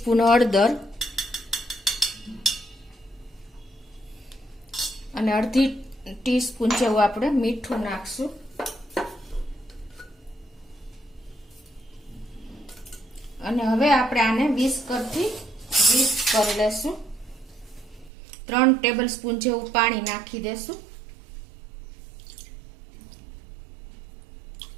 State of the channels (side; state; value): left; drops out; at 18.1 s